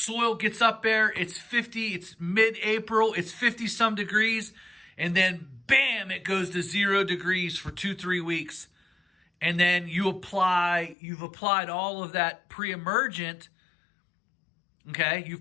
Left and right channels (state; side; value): drops out; right; at 11.0 s